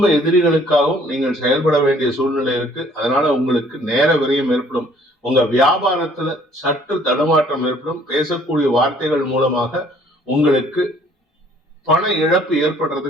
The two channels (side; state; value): both; normal; correlation 0.59